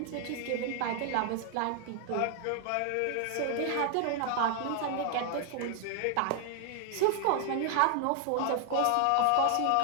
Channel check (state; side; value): different; both; correlation 0.00